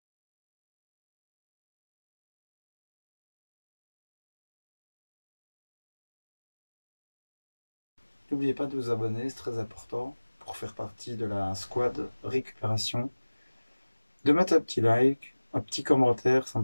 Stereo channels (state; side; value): inverted; both; correlation -1.00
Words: n'oubliez pas de vous abonner, c'est très important pour faire partie de la squad récupération. De mettre un petit like, un petit commentaire, ça